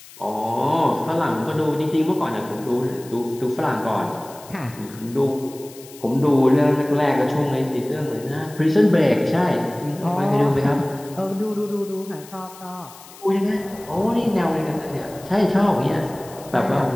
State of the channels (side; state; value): left; noise; hiss, 20 dB below the sound